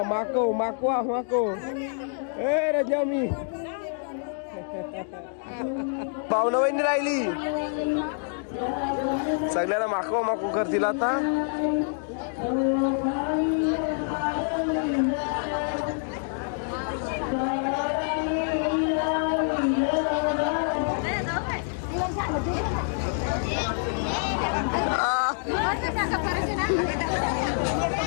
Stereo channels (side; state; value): right; silent; 60 dB below the other